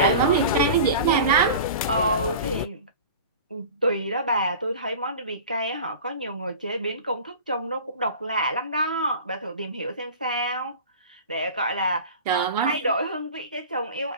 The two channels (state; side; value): inverted; both; correlation -0.36